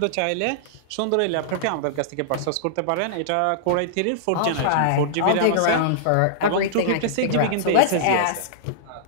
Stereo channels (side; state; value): both; different; correlation -0.02